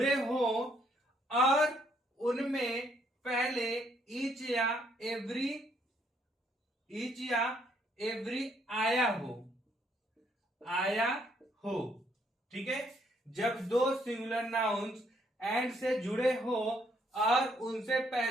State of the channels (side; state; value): both; normal; correlation 0.70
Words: हो और उनमें पहले ईच या एवरी आया हो। ठीक है, जब दो सिंगुलर नाउन्स एंड से जुड़े हो और उनसे